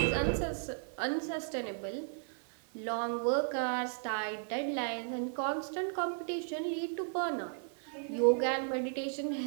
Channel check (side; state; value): left; silent; 55 dB below the other